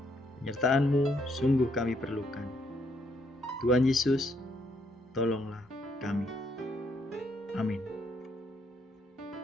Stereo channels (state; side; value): normal; both; correlation 0.73